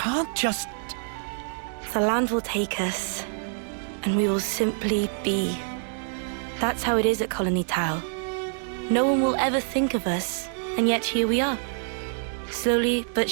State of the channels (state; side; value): silent; left; digital silence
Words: just... The land will take us, and we will simply be. That's how it is at Colony Tau. No one will ever think of us, and yet here we are. Slowly but